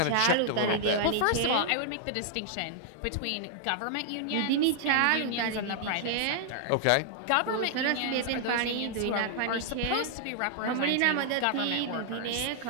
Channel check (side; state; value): both; different; correlation 0.00